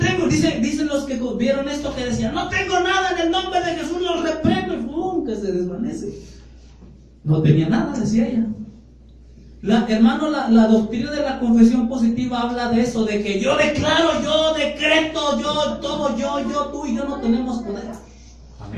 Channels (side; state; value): both; identical; correlation 1.00